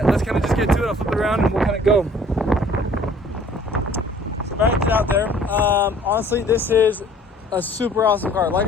let's kind of just get to it. I'll flip it around and we'll kind of go. So back to out there. Honestly, this is a super awesome car.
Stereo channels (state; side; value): normal; both; correlation 0.54